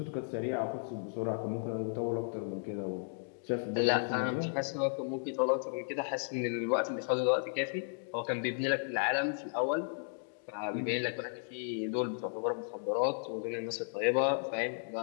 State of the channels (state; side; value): silent; right; digital silence